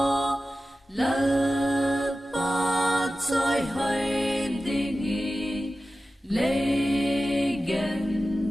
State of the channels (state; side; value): normal; both; correlation 0.94